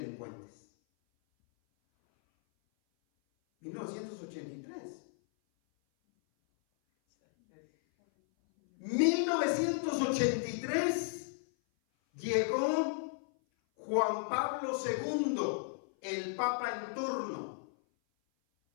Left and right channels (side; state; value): right; silent; 55 dB below the other